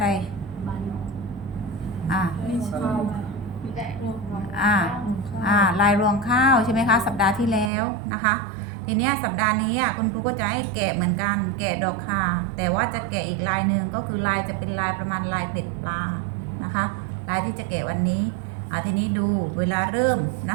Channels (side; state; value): left; drops out; at 7.7 s